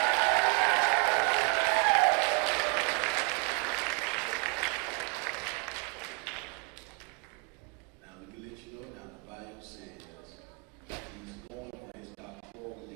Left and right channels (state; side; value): quieter; left; 32.8 dB